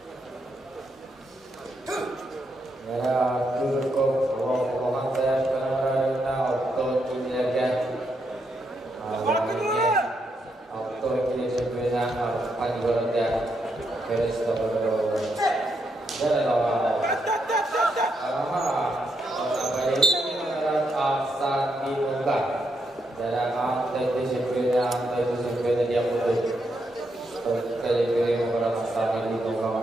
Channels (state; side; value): normal; both; correlation 0.80